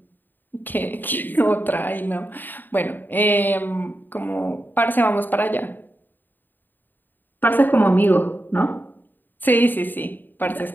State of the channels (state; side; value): late; right; 0.091 ms